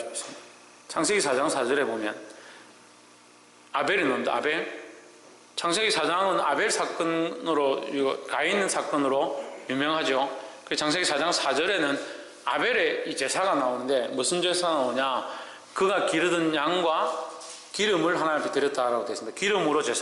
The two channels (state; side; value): identical; both; correlation 1.00